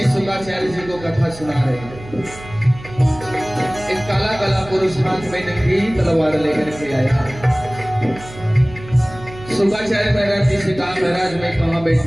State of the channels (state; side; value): noise; right; hum, 16 dB below the sound